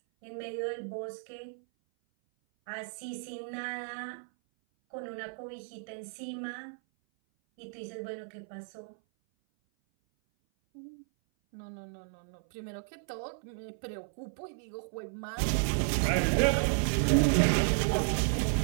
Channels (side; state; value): left; silent; 56 dB below the other